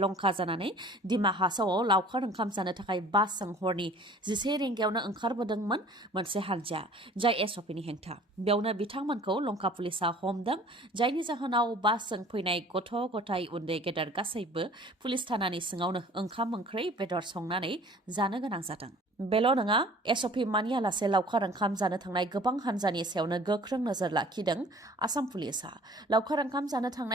लंका जानानै दिमा हासावआव लावखार ओंखाम जानो थाखाय बासजों हरनि 11 रिंगायावनो ओंखारबोदोंमोन मोनसे हान्जाया, जाय SOPनि हेंथा। बेयावनो बिथांमोनखौ लंका पुलिसा हमदों, जायनि जाहोनाव बासजों फैनाय गथ' गथाय उन्दै गेदेर गासैबो पुलिस थानानि सिङावनो ओंखाम ओंख्रि बेदर संनानै जानो गोनां जादों। बेल' नङा, SOP मानियालासे लावखार ओंखाम जानो थांनाय गोबां हान्जानि सायावनो गोख्रों नोजोर लाखिदों आसाम पुलिसा। लावखार ओंखाम जानो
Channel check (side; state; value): both; normal; correlation 0.49